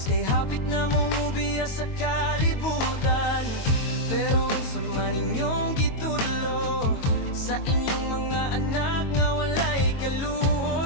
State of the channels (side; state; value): right; late; 22 ms